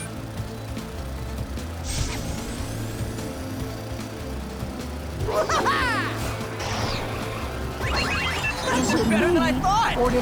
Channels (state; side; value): identical; both; correlation 1.00